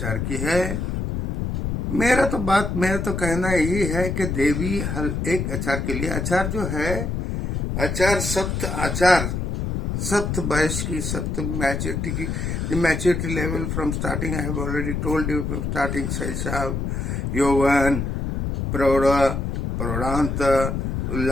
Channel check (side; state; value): left; noise; rumble, 2 dB below the sound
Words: की है। मेरा तो कहना यही है कि देवी हर एक आचार के लिए, आचार जो है, आचार सप्त वयस की, सप्त मैच्योरिटी की, the maturity level from starting, I have already told you, from starting शैशव, यौवन, प्रौढ़, प्रौढ़ांत,